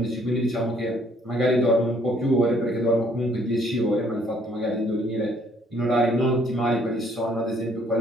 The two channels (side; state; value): both; normal; correlation 0.64